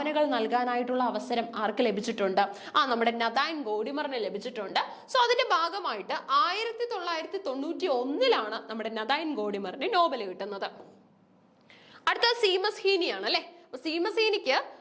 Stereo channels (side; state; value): both; identical; correlation 1.00